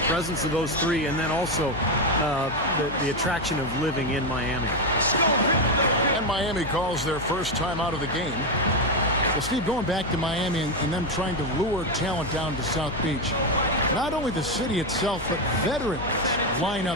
presence of those three, and then also the attraction of living in Miami. And Miami calls their first time out of the game. Well, Steve, going back to Miami and them trying to lure talent down to South Beach, not only the city itself, but veterans line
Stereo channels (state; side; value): noise; left; hum, 11 dB below the sound